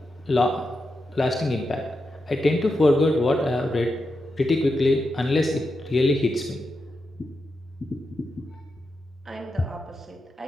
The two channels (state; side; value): normal; both; correlation 0.87